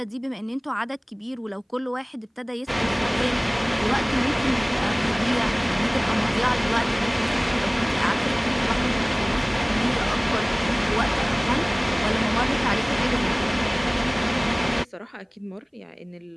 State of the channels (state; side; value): identical; both; correlation 1.00